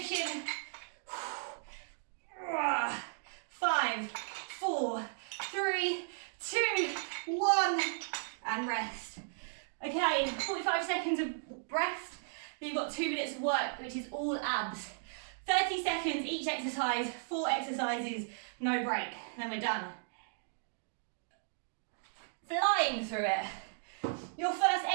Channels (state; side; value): silent; left; digital silence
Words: 5, 4, 3, 2, 1, and rest. Okay, 45 seconds of rest. Then you've got 2 minutes of work, which is all abs. 30 seconds each exercise, 4 exercises, no break. Then we're done. Flying through it. Your first